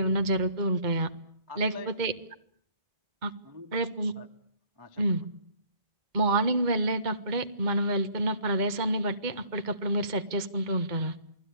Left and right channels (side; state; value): left; late; 2.1 ms